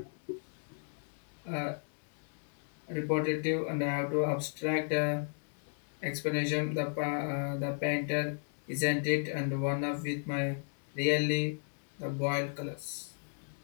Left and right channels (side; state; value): right; silent; 55 dB below the other